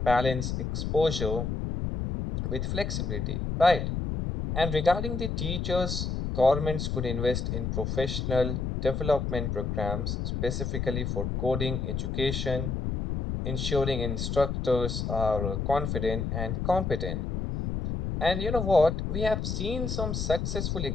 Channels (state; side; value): noise; left; rumble, 2 dB below the sound